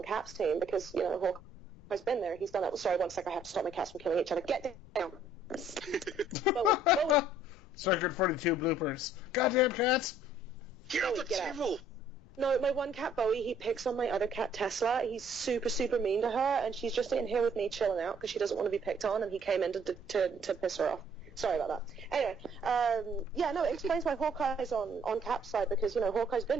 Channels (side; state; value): left; noise; rumble, 22 dB below the sound